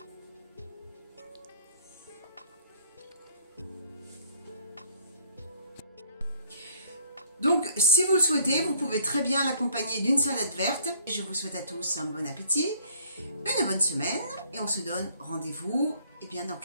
Donc, si vous le souhaitez, vous pouvez très bien l'accompagner d'une salade verte. Je vous souhaite à tous un bon appétit, une bonne semaine et on se donne rendez-vous eh bien, dans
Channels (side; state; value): both; inverted; correlation -0.61